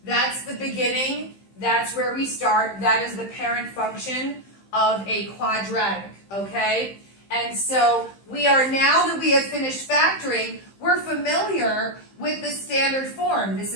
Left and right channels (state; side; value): late; right; 15 ms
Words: That's the beginning, that's where we start. That is the parent function of a quadratic, okay? And so we are, now that we have finished factoring, we're familiar with the standard form. This